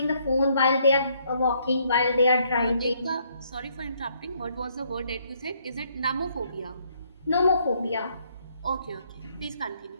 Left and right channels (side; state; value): both; inverted; correlation -0.69